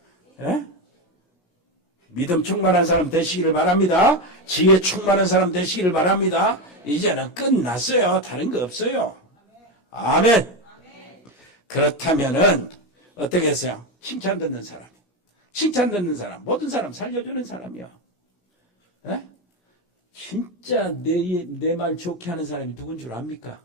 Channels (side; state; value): right; late; 17 ms